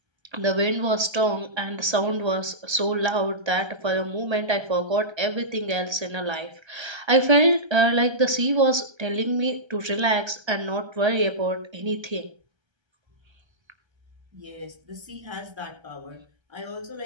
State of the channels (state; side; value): late; left; 1.3 ms